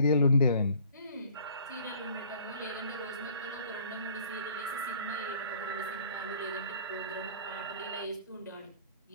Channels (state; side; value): inverted; both; correlation -0.53